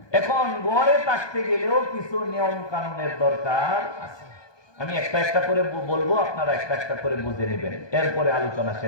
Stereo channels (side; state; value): right; late; 1.2 ms